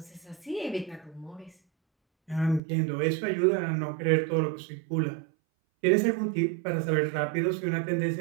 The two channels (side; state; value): left; drops out; at 2.6 s